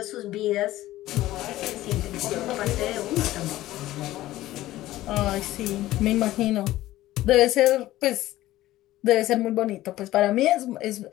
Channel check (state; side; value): quieter; right; 15.6 dB